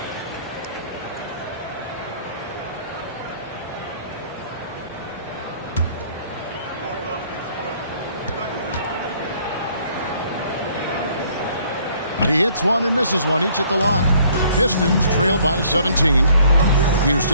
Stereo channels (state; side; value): inverted; both; correlation -0.60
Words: He hits one and misses one, each at the line. Pistons trail by 17.